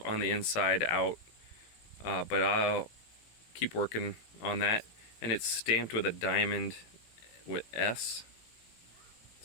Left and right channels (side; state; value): right; late; 18 ms